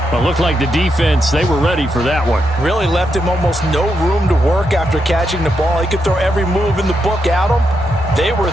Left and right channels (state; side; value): normal; both; correlation 0.83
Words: Well, looked like the defense, they were ready for that one. Really left him almost no room to work after catching the ball. He could throw every move in the book at him. They were